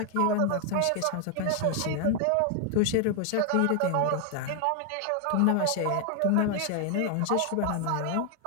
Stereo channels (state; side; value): different; both; correlation 0.00